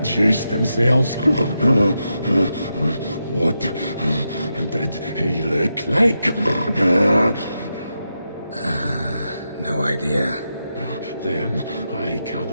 themselves. What did he look like? No idea. Then I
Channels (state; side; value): inverted; both; correlation -0.86